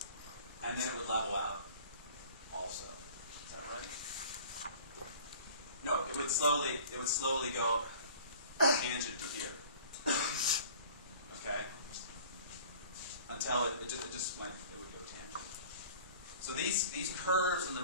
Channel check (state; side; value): inverted; both; correlation -0.47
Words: and then it would level out also. Is that right? No, it would slowly go tangent to here. Okay? Until it would go tangent. So these curves and